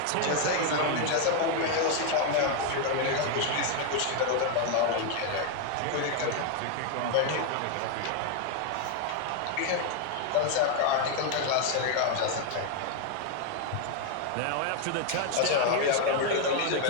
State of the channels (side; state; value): both; different; correlation 0.01